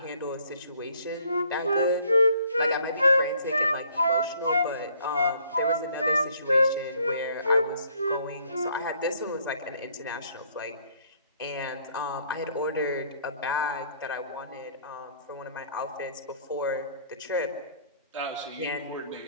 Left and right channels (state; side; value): inverted; both; correlation -0.62